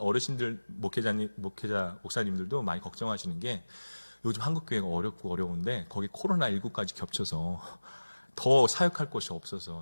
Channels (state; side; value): inverted; both; correlation -1.00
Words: 목사님들도 많이 걱정하시는 게, 요즘 한국교회가 어렵고 어려운데 거기 코로나19까지 겹쳐서 더 사역할 곳이